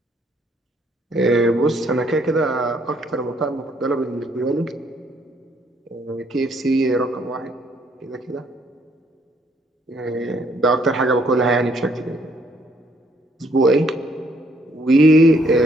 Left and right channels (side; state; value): both; normal; correlation 0.68